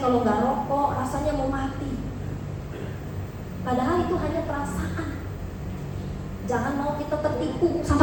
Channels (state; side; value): identical; both; correlation 1.00